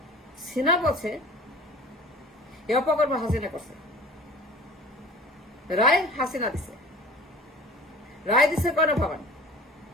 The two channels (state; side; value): normal; both; correlation 0.42